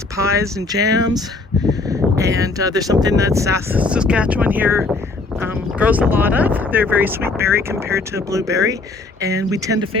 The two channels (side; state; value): right; quieter; 3.6 dB